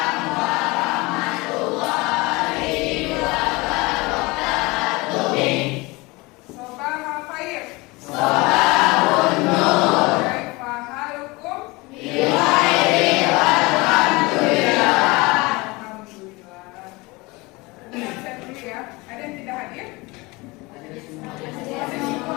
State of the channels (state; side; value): quieter; right; 23.9 dB